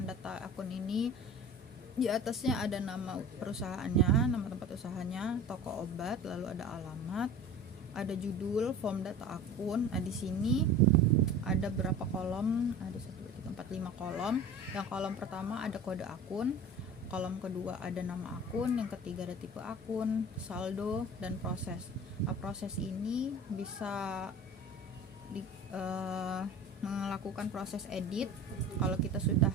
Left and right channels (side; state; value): both; normal; correlation 0.38